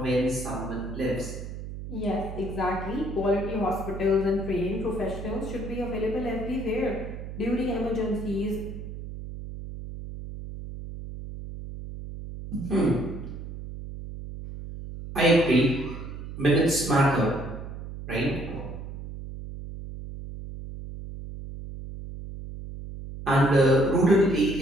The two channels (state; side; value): noise; right; hum, 10 dB below the sound